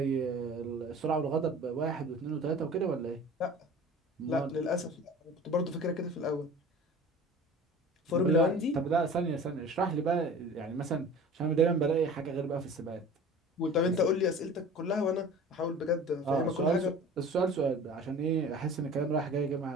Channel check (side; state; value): both; normal; correlation 0.41